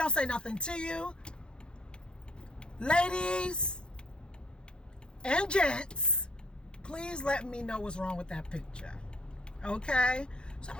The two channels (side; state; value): right; late; 0.050 ms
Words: say nothing to you. Ladies and gents, please let me know what's wrong with that picture. Okay? So I'm